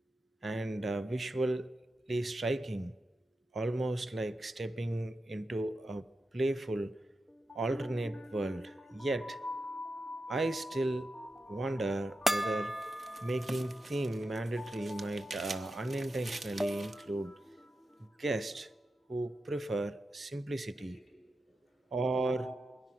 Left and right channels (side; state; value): both; normal; correlation 0.89